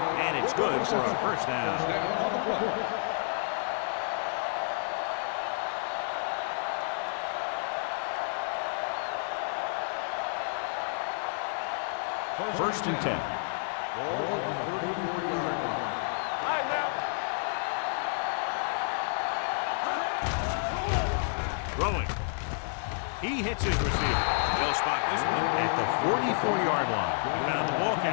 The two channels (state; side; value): silent; right; 58 dB below the other